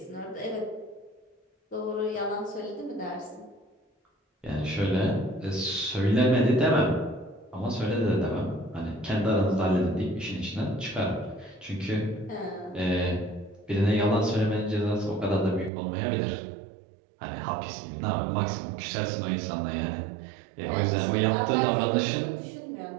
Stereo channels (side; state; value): left; drops out; at 15.7 s